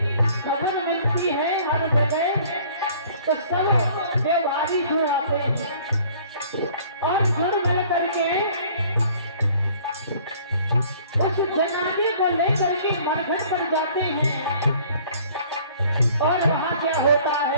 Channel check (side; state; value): both; inverted; correlation -0.54